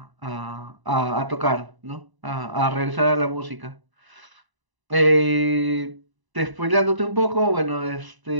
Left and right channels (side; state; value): left; late; 1.0 ms